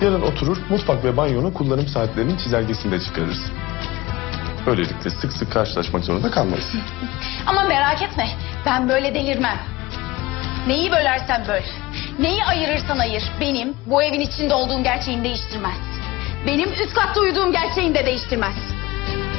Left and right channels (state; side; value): quieter; right; 20.1 dB